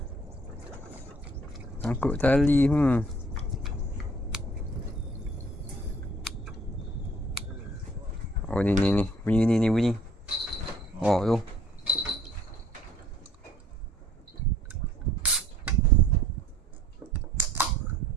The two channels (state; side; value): normal; both; correlation 0.56